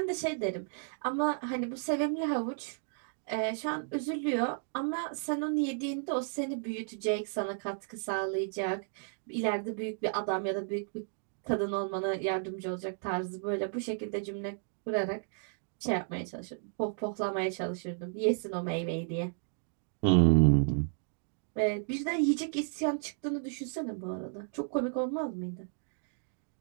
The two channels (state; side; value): silent; left; digital silence